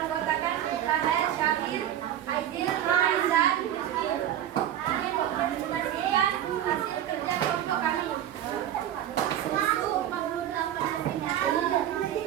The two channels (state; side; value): quieter; left; 11.3 dB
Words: Rahel, Syakir, Aidil, dan Rizky. Kami mempresentasikan hasil kerja kelompok kami. Susu 48 cm,